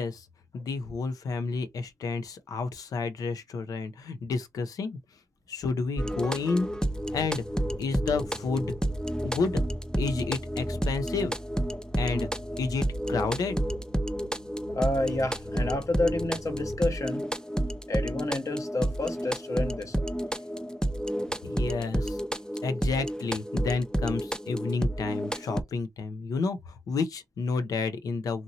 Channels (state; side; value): normal; both; correlation 0.84